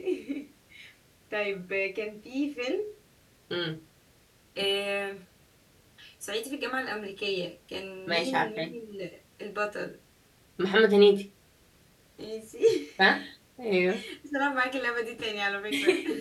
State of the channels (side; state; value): both; identical; correlation 1.00